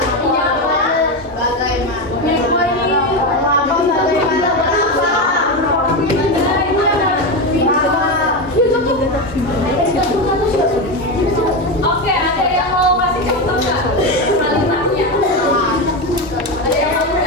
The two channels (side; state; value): both; normal; correlation 0.14